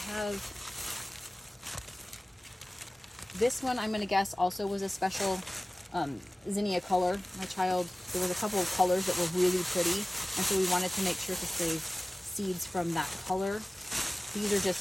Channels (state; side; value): normal; both; correlation 0.97